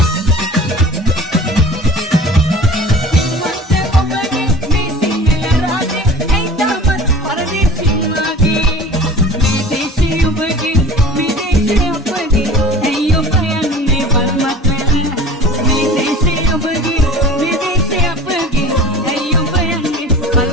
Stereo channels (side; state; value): both; normal; correlation 0.42